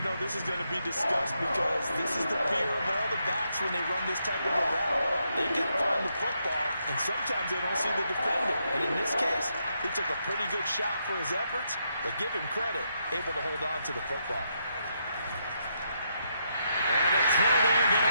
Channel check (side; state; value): both; inverted; correlation -0.80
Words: know this is going to be discussed because this is the fear of all the backs when they run this type of a route. They've got to find the football, and sometimes they don't see the defender. And in this case, he took a pretty good shot for his efforts, but give him credit, able to hold on to the football. And a throw there going